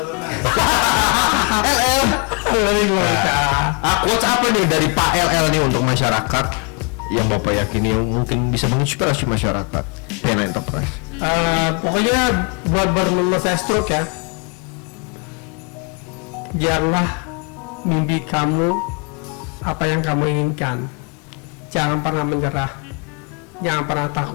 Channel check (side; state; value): right; quieter; 35.4 dB